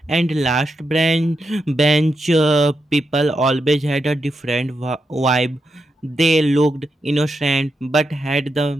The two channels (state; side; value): normal; both; correlation 0.85